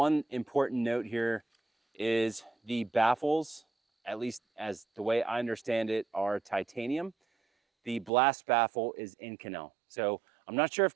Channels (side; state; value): left; drops out; at 8.1 s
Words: important note here is the baffles, at least as the way I understand it, are titanium. The blast baffle is Inconel. So I'm not sure if